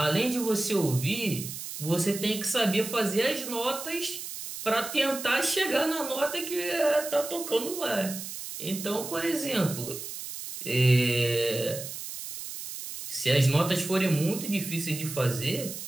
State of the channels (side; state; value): right; noise; hiss, 9 dB below the sound